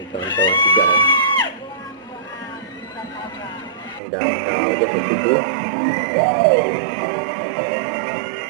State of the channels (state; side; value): drops out; left; at 4.0 s